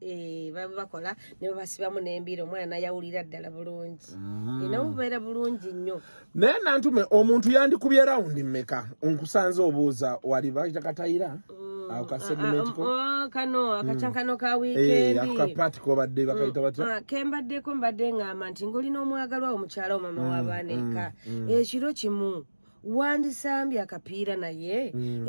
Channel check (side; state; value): both; inverted; correlation -1.00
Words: baba bakola ne babasibamu n'embira omwana nayawulira ddala bulungi nabo bubeera bulungi nnyo naye nantume omuntu yandikubye rawundi mmeka nkusanze obuuza wali bakita katayira Akasegment ko. Kano akachankano ka weekend. Akapati ko badde bakayita batya. Kembadde ko mbadde ngamba nti ngolina omwagalwa omukyala mama w'abaana ekiro kimu wandisambye akapiira naye